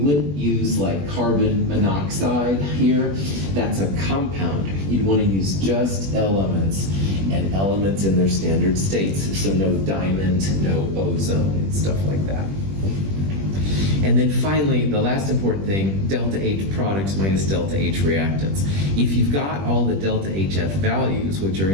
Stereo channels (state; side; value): late; left; 21 ms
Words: wouldn't use like carbon monoxide here. That's a compound. You'd want to use just elements, and elements in their standard states. So no diamond, no ozone, stuff like that. And then finally, the last important thing, delta H products minus delta H reactants. If you've got all the delta HF values, which are